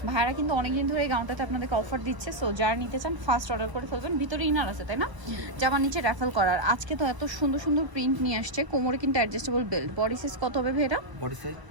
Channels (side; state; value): left; late; 1.0 ms